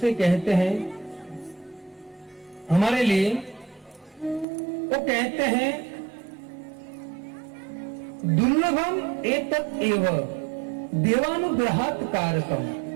कहते हैं हमारे लिए। वो कहते हैं दुर्लभम एतत् एव देवानुग्रहात् कारकम।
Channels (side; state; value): left; drops out; at 4.5 s